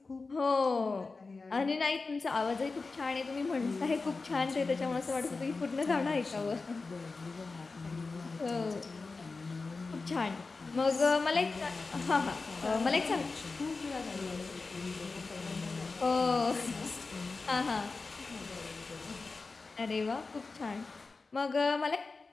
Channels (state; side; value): quieter; right; 4.0 dB